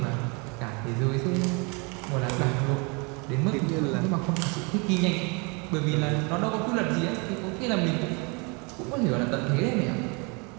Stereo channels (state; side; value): quieter; left; 31.1 dB